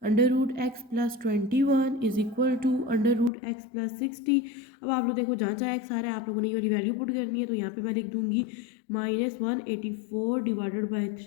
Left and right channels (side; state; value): right; drops out; at 3.3 s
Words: under root x plus 21 is equal to under root x plus 60। अब आप लोग देखो जहाँ जहाँ x आ रहा है आप लोगों ने ये वाली वैल्यू पुट करनी है। तो यहाँ पे मैं लिख दूंगी -184 डिवाइडेड बाय